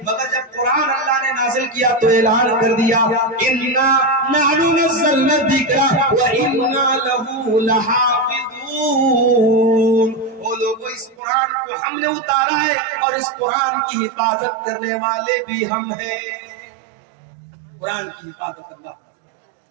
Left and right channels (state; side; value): drops out; left; at 11.2 s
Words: مگر جب قرآن اللہ نے نازل کیا تو اعلان کر دیا اِنَّا نَحْنُ نَزَّلْنَا الذِّكْرَ وَإِنَّا لَهُ لَحَافِظُونَ. وہ لوگوں, اس قرآن کو ہم نے اتارا ہے اور اس قرآن کی حفاظت کرنے والے بھی ہم ہیں. قرآن کی حفاظت اللہ.